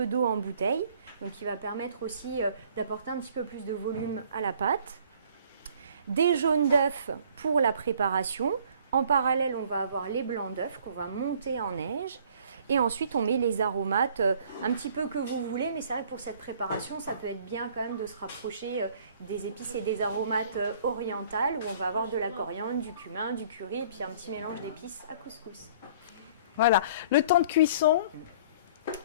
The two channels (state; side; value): inverted; both; correlation -0.55